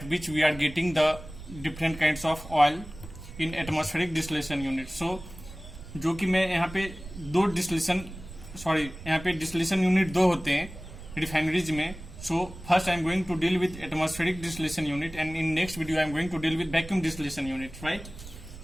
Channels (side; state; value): right; noise; rumble, 14 dB below the sound